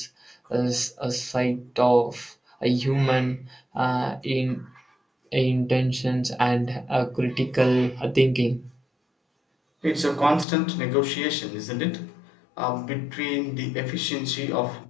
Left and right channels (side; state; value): right; drops out; at 10.5 s